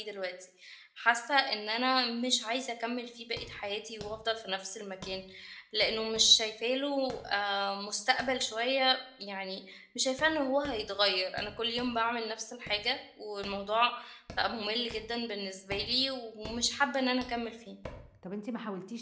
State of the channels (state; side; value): identical; both; correlation 1.00